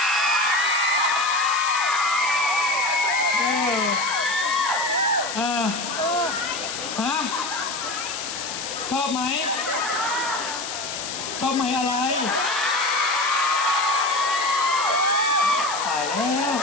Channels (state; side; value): noise; left; hiss, 6 dB below the sound